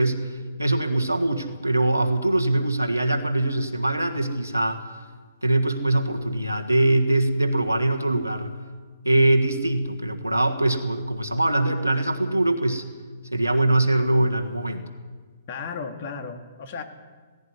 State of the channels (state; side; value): inverted; both; correlation -0.90